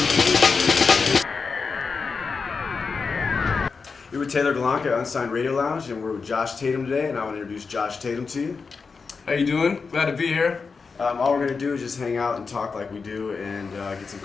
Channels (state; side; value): quieter; right; 4.9 dB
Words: We're with Taylor Galanka at Unsigned Radio Lounge, and we're with Josh Tatum today, and I want to introduce Josh Tatum to you. How you doing? Glad to be here. All we're going to do is just hang out and talk like we do and get some